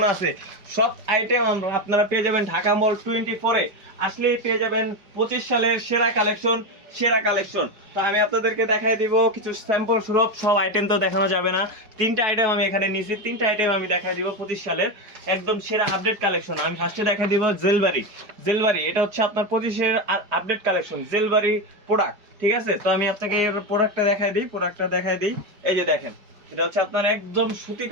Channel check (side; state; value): left; late; 5.0 ms